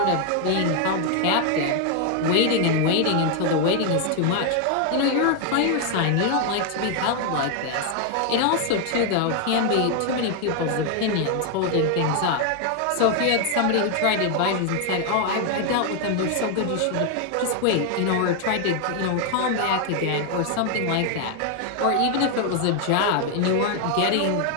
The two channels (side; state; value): both; different; correlation 0.01